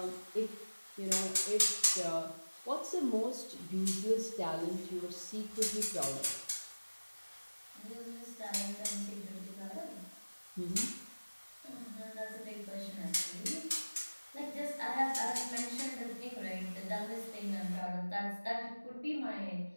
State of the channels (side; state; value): both; inverted; correlation -1.00